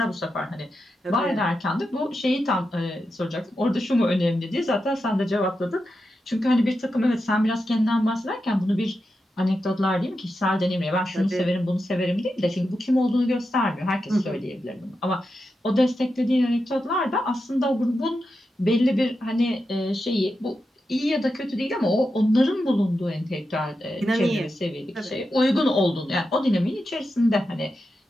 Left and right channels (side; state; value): both; normal; correlation 0.88